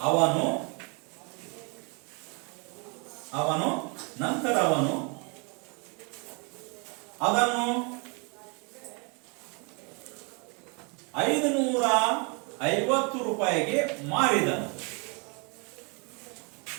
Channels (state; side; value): quieter; left; 33.6 dB